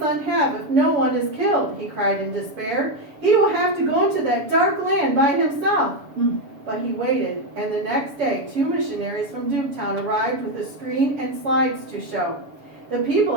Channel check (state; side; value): late; left; 7.1 ms